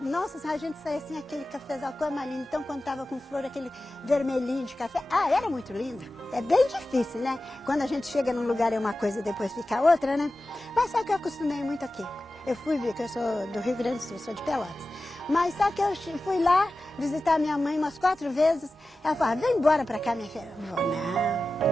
nossa, a gente saía assim, aquele cafezal cor mais lindo. Então, quando estava com flor, aquele vermelhinho de café, era muito lindo. É bem difícil, né? Quando a gente chega num lugar é uma coisa e depois fica outra, né? Mas sabe que eu acostumei muito aqui. Eu fui ver que eu sou do Rio Grande do Sul, sou de Pelotas. Mas só que eu fui lá visitar minha mãe umas 4 vezes. Ela falava, vem embora pra cá, minha filha. Eu vou, não,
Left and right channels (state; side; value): normal; both; correlation 0.95